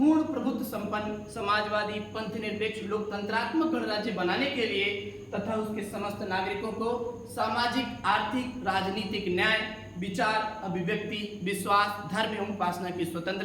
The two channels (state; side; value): identical; both; correlation 1.00